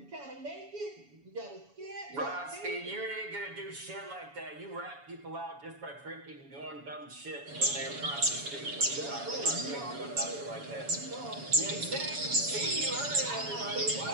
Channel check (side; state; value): left; late; 7.1 ms